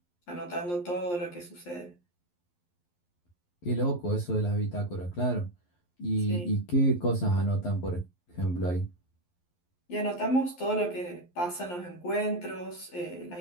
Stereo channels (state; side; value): late; right; 11 ms